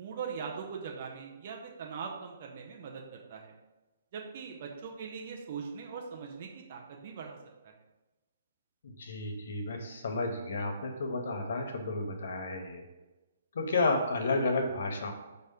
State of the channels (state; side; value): inverted; both; correlation -0.66